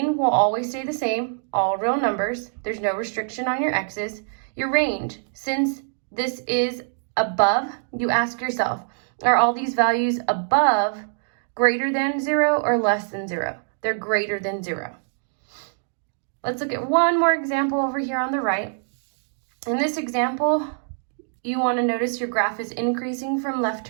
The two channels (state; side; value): silent; left; digital silence